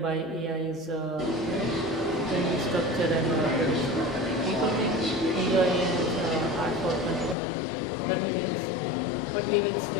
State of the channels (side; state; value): right; drops out; at 7.4 s